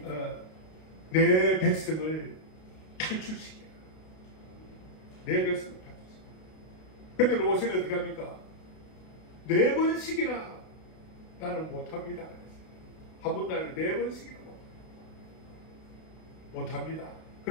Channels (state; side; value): late; right; 32 ms